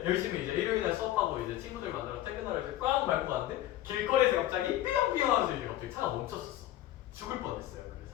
열심히 이제 일요일날 수업하고 이제 친구들 만나러 퇴근하러 이제 꽝 밟고 갔는데 길거리에서 갑자기 삐용삐용 하면서 이제 갑자기 차가 멈췄었어. 죽을 뻔했어요.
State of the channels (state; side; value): quieter; right; 13.7 dB